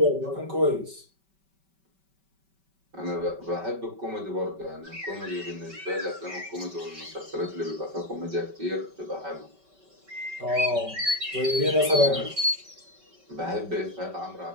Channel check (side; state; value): left; late; 5.2 ms